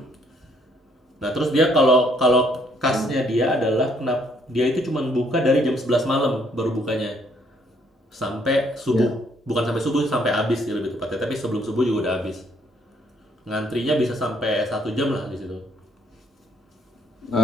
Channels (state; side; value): normal; both; correlation 0.67